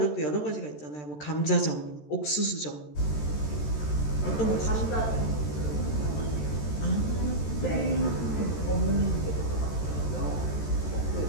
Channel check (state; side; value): late; right; 13 ms